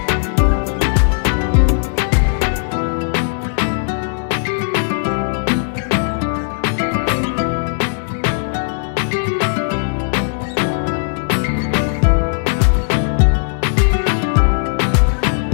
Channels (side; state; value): right; silent; digital silence